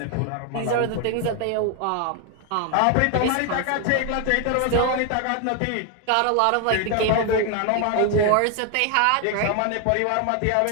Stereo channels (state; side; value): different; both; correlation 0.00